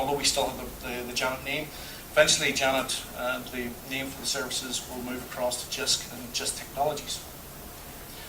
we still have the Janet name, eventually Janet, the name for the services, will move across to JISC and JISC Technologies.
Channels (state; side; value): identical; both; correlation 1.00